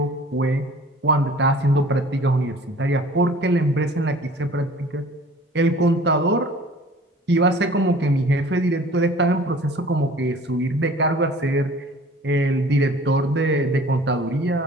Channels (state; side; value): normal; both; correlation 0.48